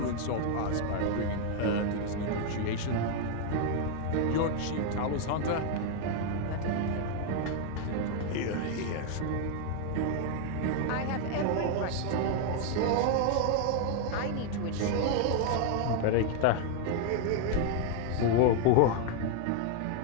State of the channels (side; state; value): both; different; correlation 0.00